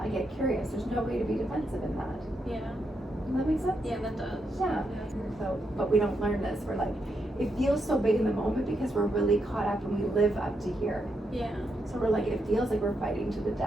I get curious. There's no way to be defensive in that. Yeah. Does that make sense? Yeah, that does. Yeah. So, but we don't learn this. We're like, it feels so big in the moment because we're really caught up and we live up to here. Yeah. So we're like, it feels like we're fighting to the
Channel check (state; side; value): normal; both; correlation 0.82